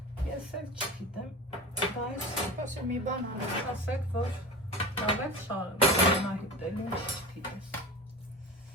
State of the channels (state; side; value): normal; both; correlation 0.31